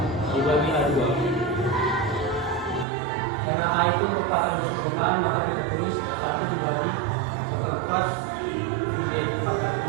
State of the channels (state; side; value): drops out; left; at 2.9 s